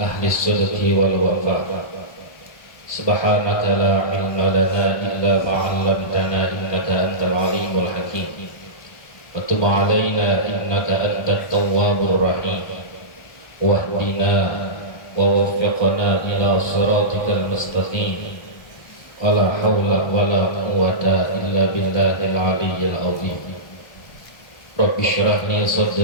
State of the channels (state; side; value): late; right; 1.3 ms